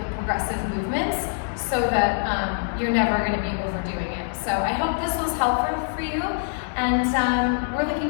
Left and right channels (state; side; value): silent; right; digital silence